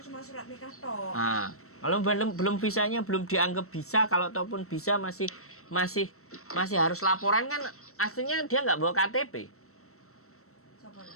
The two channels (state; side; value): late; right; 0.63 ms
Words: cuma surat nikah toh. Nah, kalau belum visanya belum dianggap bisa, kalau ataupun bisa masih harus laporan kan, aslinya dia nggak bawa KTP. Siapa